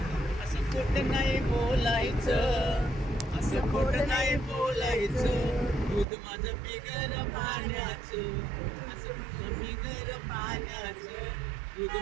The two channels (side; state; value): left; drops out; at 6.1 s